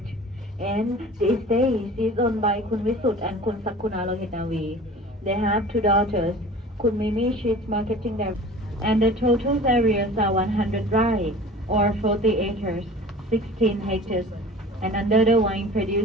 and these days is owned by Kun Visut and Kun Sakuna Lohitavi. They have 2 daughters. Kun Mimi, she's marketing them. And the total areas are 100 rai, or 40 acres, 16 hectares, and under the wine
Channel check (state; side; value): normal; both; correlation 0.41